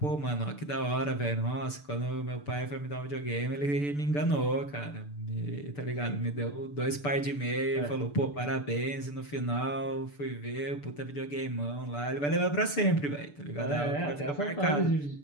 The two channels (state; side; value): late; right; 6.8 ms